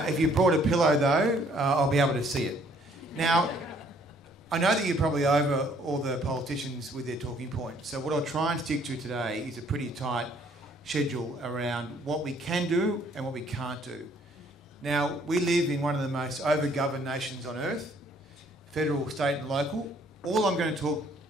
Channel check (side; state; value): both; normal; correlation 0.62